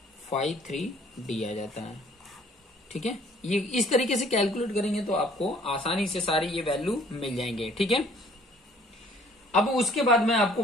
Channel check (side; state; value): both; normal; correlation 0.58